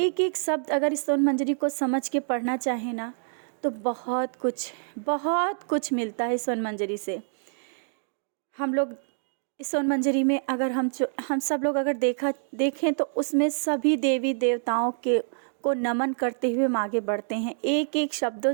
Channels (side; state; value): left; silent; digital silence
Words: एक शब्द अगर इस स्वर्ण मंजरी को समझ के पढ़ना चाहे ना, तो बहुत कुछ मिलता है स्वर्ण मंजरी से। हम लोग इस स्वर्ण मंजरी में अगर हम सब लोग अगर देखें तो उसमें सभी देवी देवताओं को नमन करते हुए हम आगे बढ़ते हैं। एक एक शब्दों